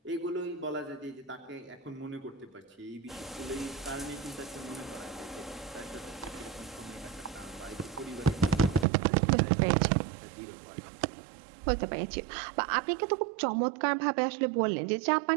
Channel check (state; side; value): drops out; left; at 8.8 s